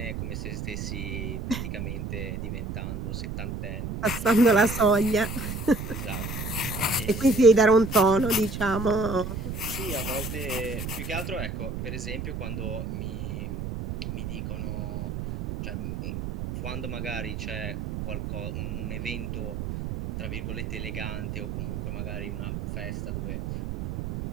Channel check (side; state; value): right; noise; rumble, 5 dB below the sound